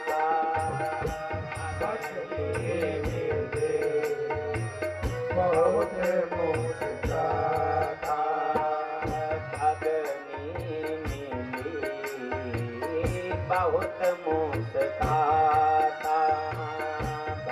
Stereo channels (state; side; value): identical; both; correlation 1.00